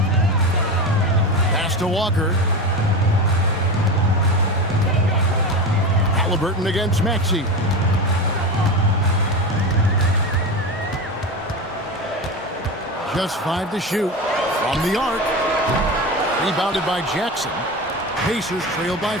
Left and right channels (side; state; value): both; normal; correlation 0.23